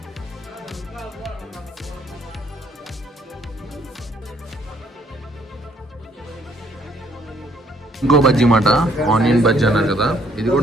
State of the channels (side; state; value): both; normal; correlation 0.65